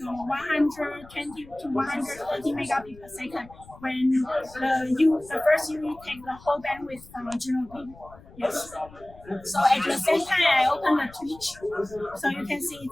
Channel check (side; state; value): left; noise; rumble, 21 dB below the sound